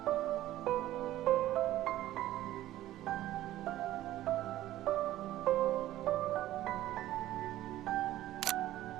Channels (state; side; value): quieter; left; 14.4 dB